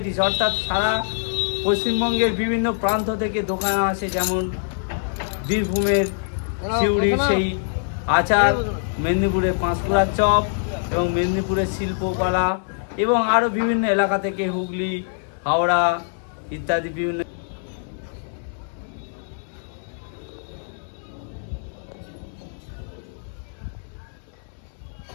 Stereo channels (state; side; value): silent; right; digital silence